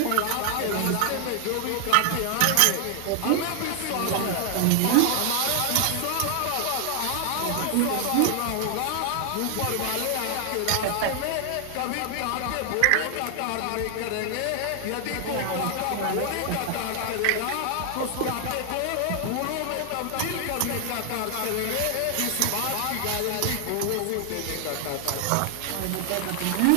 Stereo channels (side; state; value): both; different; correlation 0.00